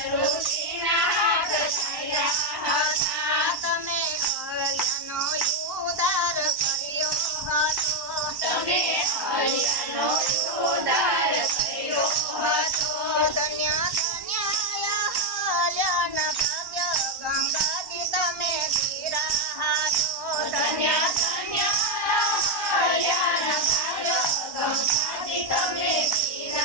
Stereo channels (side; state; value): left; late; 1.1 ms